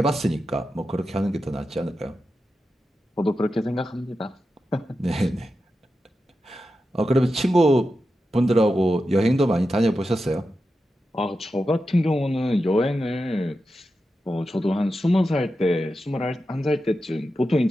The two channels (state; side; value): normal; both; correlation 0.90